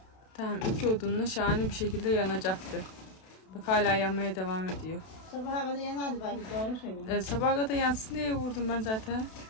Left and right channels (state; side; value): late; right; 32 ms